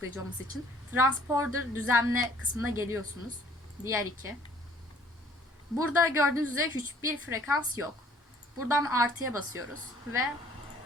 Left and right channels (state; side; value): normal; both; correlation 0.58